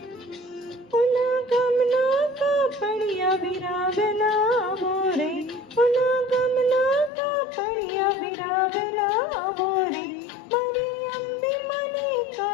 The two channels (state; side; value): drops out; right; at 7.1 s